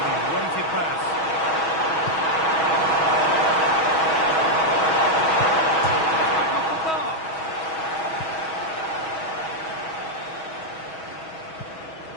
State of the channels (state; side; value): late; right; 6.2 ms